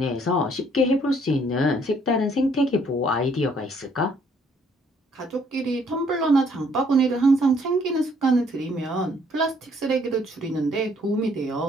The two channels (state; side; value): normal; both; correlation 0.64